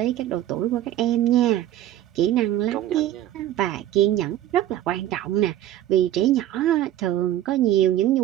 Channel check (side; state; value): left; quieter; 12.8 dB